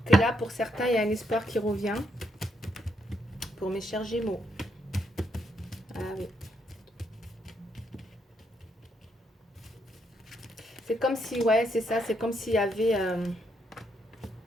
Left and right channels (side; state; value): both; normal; correlation 0.77